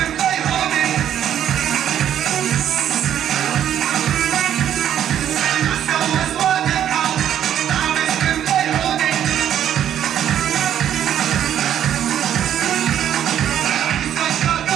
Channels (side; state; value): left; quieter; 10.3 dB